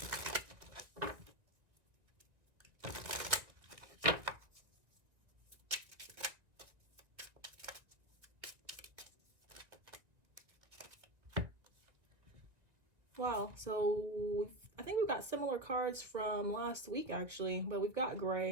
Wow, so I think we've got similar cards from last week actually, but we've got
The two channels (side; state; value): left; late; 1.8 ms